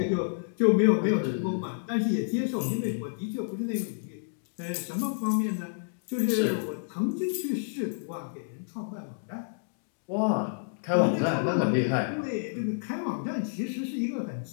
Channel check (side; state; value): right; silent; digital silence